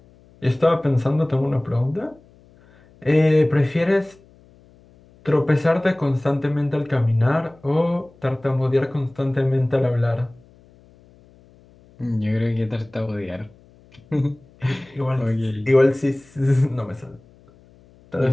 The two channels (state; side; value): noise; left; hum, 28 dB below the sound